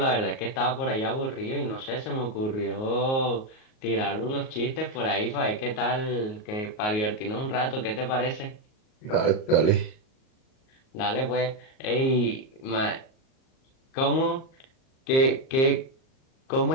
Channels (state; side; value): late; right; 38 ms